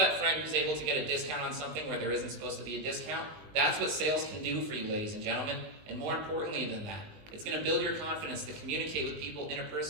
friend who's able to get a discount on something where there isn't supposed to be a discount. That's what sales can do for you, ladies and gentlemen. And more importantly than that, it's going to build your confidence to communicate with people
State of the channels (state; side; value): late; left; 20 ms